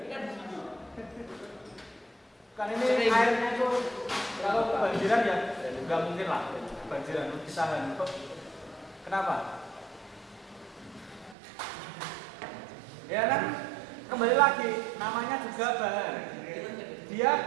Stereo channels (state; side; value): drops out; left; at 11.4 s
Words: Kan ini airnya itu kalau kebanjiran ya nggak mungkin lah kebanjiran ditahan. Kenapa? Ya kan kembali lagi namanya juga bahan. Dia